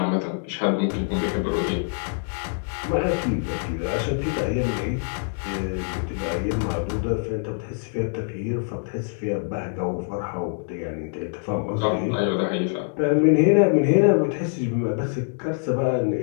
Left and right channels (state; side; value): silent; right; 61 dB below the other